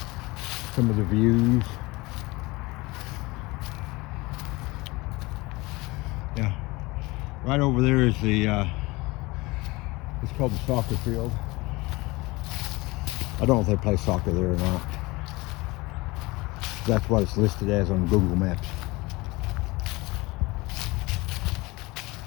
Some of the views. Yeah, right over there is the it's called the soccer field. I don't know if they play soccer there or not. That's what it's listed as on Google Maps.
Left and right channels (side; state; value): right; quieter; 22.8 dB